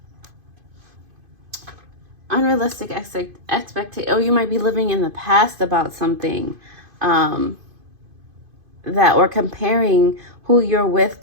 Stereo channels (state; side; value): late; left; 2.5 ms